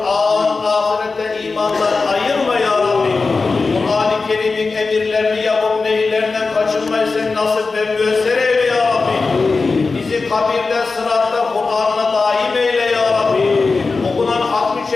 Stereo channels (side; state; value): right; quieter; 4.1 dB